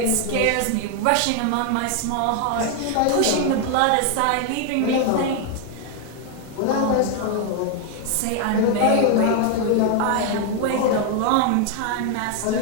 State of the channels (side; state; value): both; different; correlation 0.00